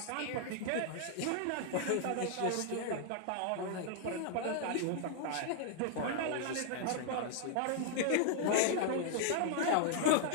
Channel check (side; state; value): both; different; correlation 0.00